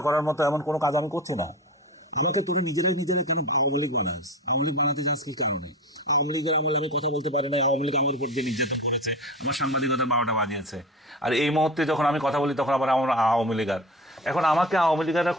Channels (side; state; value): both; normal; correlation 0.31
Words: করার মতো এমন কোনো কাজ আমি করছি না। আমাকে তুমি নিজেরাই কেন আওয়ামী লীগ বানাস? আওয়ামী লীগ বানাতে চাস কি কারণে? আওয়ামী লীগের আমলে আমি কথা বলতে পারি না, আওয়ামী লীগ আমার উপর দিয়ে নির্যাতন করেছে, আমার সাংবাদিকতা 12টা বাজিয়েছে। আর এই মুহূর্তে যখন আমি কথা বলি তখন আবার আমার আওয়ামী লীগার। এখন আমাকে আওয়ামী লীগাররা